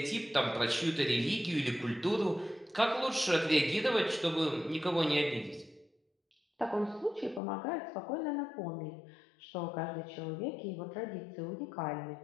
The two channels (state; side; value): drops out; right; at 7.4 s